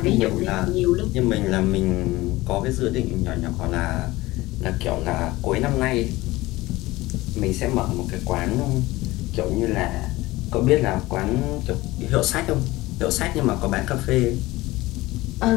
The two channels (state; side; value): quieter; right; 19.2 dB